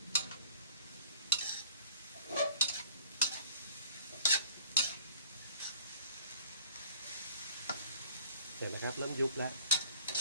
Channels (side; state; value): both; inverted; correlation -0.51